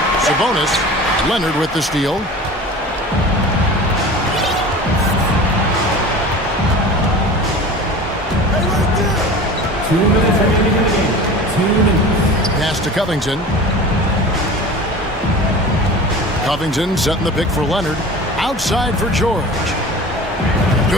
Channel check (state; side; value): normal; both; correlation 0.37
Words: Sabonis. Leonard with the steal. Pass to Covington. Covington setting the pick for Leonard. Outside for George.